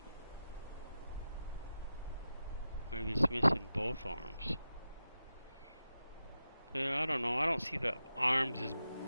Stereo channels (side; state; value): both; inverted; correlation -0.91